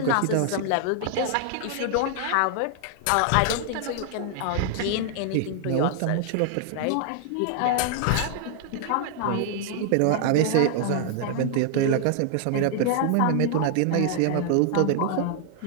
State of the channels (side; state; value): both; different; correlation 0.00